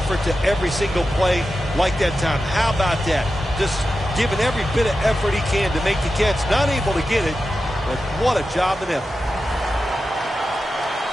to every single play like that time, how about that? Just giving every bit of effort he can to make the catch. Not able to get it, but what a job and effort.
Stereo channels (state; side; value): normal; both; correlation 0.91